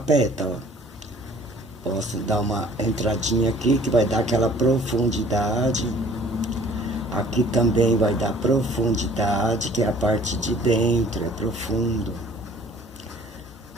Posso dar uma entradinha aqui, que vai dar aquela profundidade. Aqui também vai dar profundidade, que é a parte de dentro, é profundo.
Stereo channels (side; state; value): both; normal; correlation 0.53